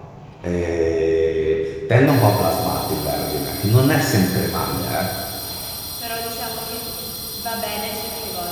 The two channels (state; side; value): identical; both; correlation 1.00